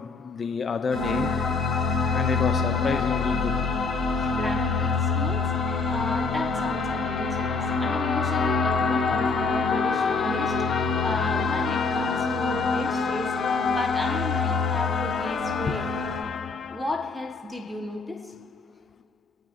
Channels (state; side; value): quieter; right; 4.1 dB